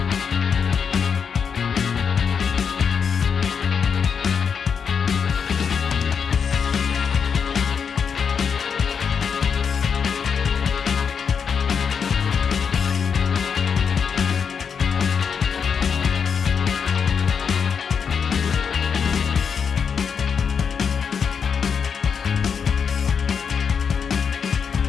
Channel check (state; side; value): quieter; right; 6.6 dB